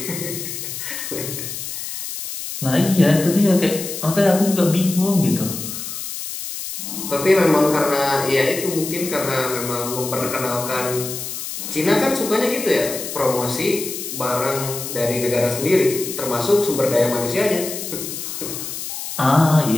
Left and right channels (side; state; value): left; noise; hiss, 7 dB below the sound